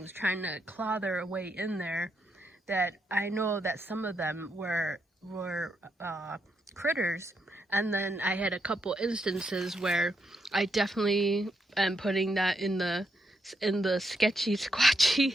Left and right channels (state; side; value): normal; both; correlation 0.81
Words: trying to claw their way in there, that I know that some of them were critters. And then I had a couple instances where I definitely am putting that in the sketchy squatchy